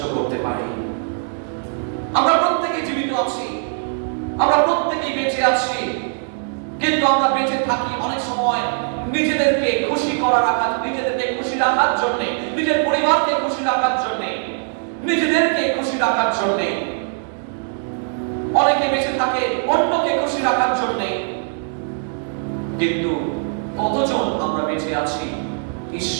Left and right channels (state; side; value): silent; left; digital silence